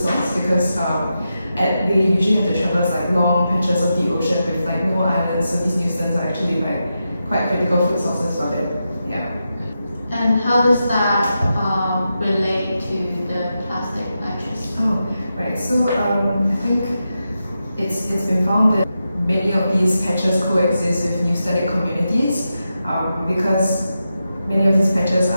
because they usually have to traverse like long patches of the ocean with like no islands, so these newstones are actually like quite critical food sources for them. Yeah. And how does that relate to the plastic patches? Oh, right. So I think it's been found that many of these patches coexist with newstonic communities because many of these patches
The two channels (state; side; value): inverted; both; correlation -0.88